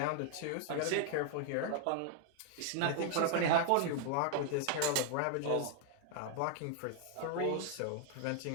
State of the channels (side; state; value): both; different; correlation 0.00